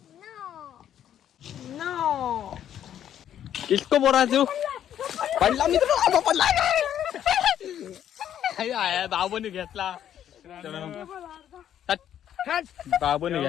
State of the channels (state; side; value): quieter; right; 10.3 dB